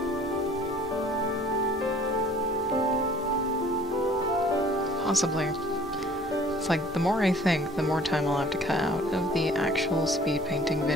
Possibly. It's like, the more I think, the more time I'll have to cut out of the actual speed painting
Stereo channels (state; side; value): normal; both; correlation 0.52